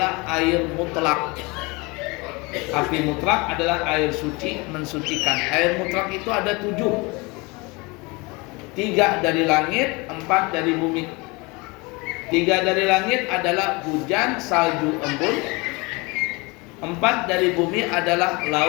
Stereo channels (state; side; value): quieter; right; 26.2 dB